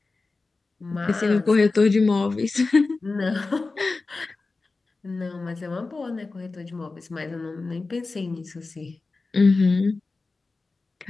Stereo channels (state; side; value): quieter; right; 3.7 dB